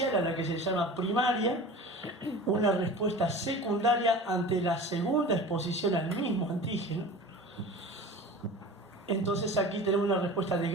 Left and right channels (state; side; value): normal; both; correlation 0.37